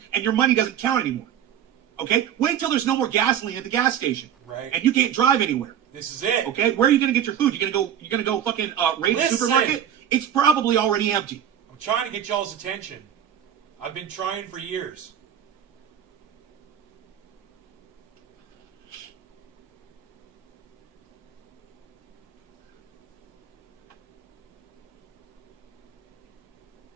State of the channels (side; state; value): left; quieter; 9.7 dB